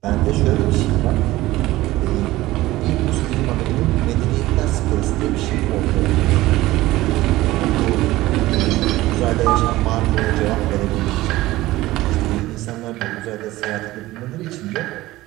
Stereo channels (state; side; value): quieter; left; 17.4 dB